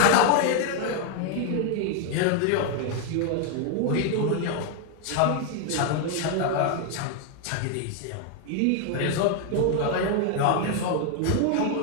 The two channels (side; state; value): both; different; correlation 0.00